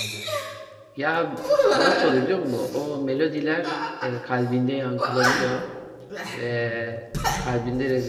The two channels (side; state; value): both; identical; correlation 1.00